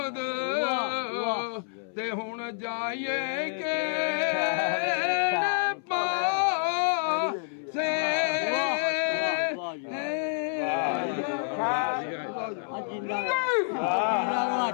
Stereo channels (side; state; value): right; silent; 59 dB below the other